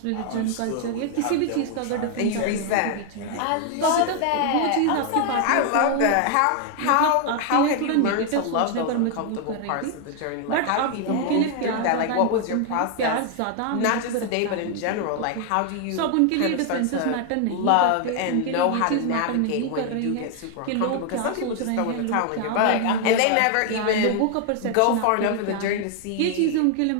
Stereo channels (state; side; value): different; both; correlation 0.00